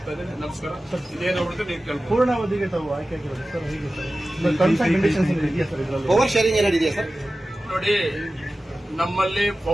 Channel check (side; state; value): both; normal; correlation 0.95